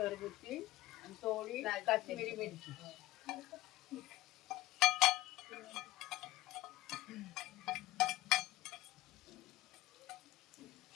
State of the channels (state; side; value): quieter; right; 17.2 dB